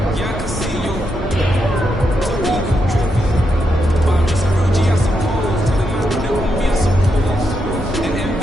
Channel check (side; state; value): both; normal; correlation 0.82